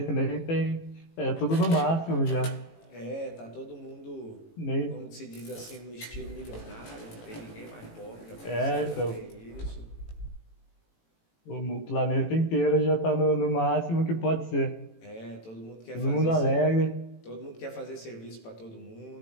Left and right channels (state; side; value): late; right; 18 ms